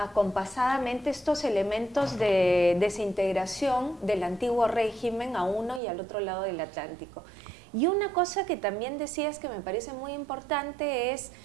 estos elementos de desintegración del antiguo régimen a uno y al otro lado del Atlántico. Y una cosa que también decías que me parece muy importante es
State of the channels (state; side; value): drops out; left; at 5.8 s